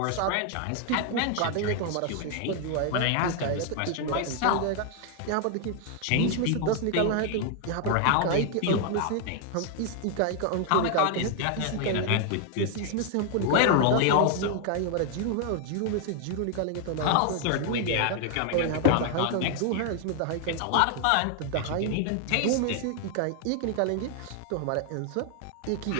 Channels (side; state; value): both; different; correlation 0.00